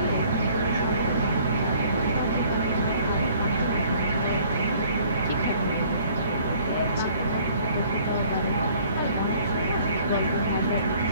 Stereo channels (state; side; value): inverted; both; correlation -0.57